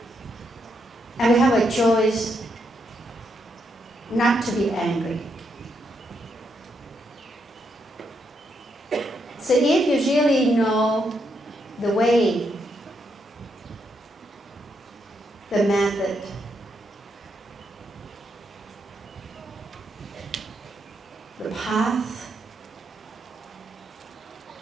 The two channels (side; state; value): both; normal; correlation 0.79